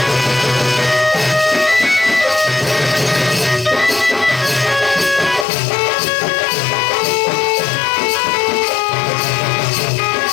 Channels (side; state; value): right; drops out; at 5.5 s